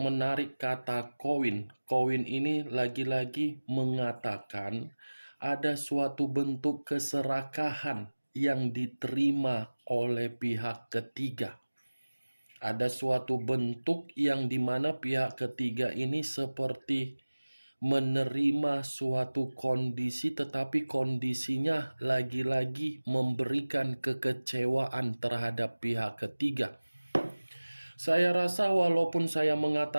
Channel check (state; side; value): inverted; both; correlation -1.00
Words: kata koin, koin ini lagi-lagi mengatakan ada suatu bentuk keserakahan yang diterima oleh pihak ketiga. Ada suatu bentuk yang dimana pihak ketiga ini seperti menerima suatu kondisi, tetapi kondisinya lagi-lagi memberikan kekecewaan terhadap pihak ketiga. Saya rasa walaupun saya